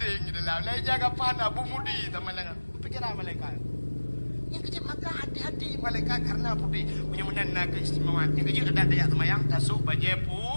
di dalam. Lai jaga pan abu mudi sama dengan pikiran malaikat. Yang kecil maka hati-hati malaikat karena putih punya menanda keistimewaan. Yang kecil ada dayak semayang tasuk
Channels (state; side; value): inverted; both; correlation -1.00